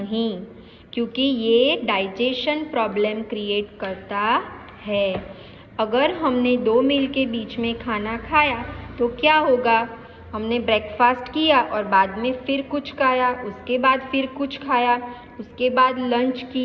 क्योंकि ये डाइजेशन प्रॉब्लम क्रिएट करता है। अगर हमने 2 मील के बीच में खाना खाया तो क्या होगा? हमने ब्रेकफास्ट किया और बाद में फिर कुछ खाया, उसके बाद फिर कुछ खाया, उसके बाद लंच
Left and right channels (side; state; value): both; identical; correlation 1.00